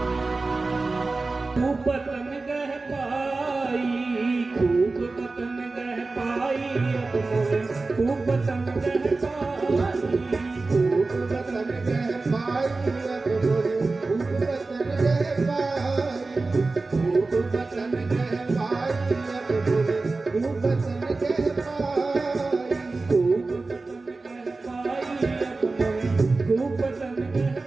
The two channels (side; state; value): left; quieter; 3.6 dB